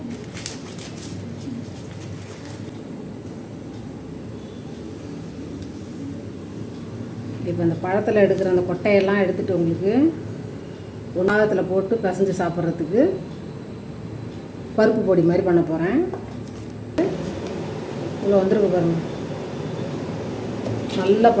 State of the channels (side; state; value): both; identical; correlation 1.00